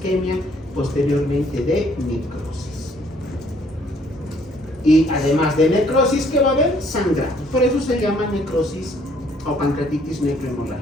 posteriormente de necrosis. Y además de necrosis, ¿qué va a haber? Sangrado. Por eso se llama necrosis o pancreatitis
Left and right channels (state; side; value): normal; both; correlation 0.63